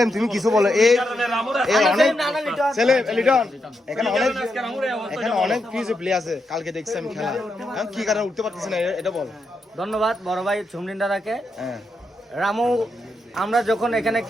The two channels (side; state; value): both; normal; correlation 0.83